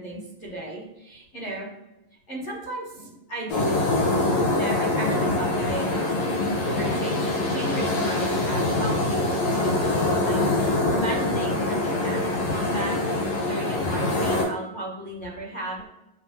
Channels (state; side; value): late; right; 11 ms